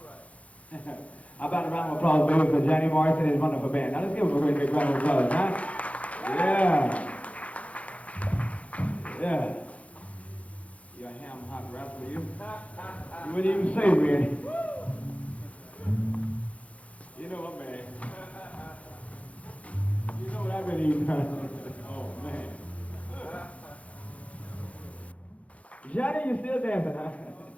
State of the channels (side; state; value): right; late; 0.064 ms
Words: right. How about a round of applause, baby, for Johnny Morrison and his wonderful band. Now, let's give him a great big round of applause, huh? Yeah. Yeah. You got ham hot wraps for you? You wouldn't even say, man. You know what, man? You know what I've been eating, huh? Oh, man. Johnny, you still dancing, huh?